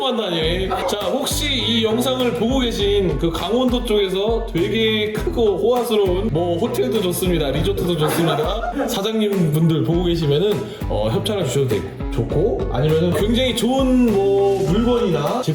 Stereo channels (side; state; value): both; identical; correlation 1.00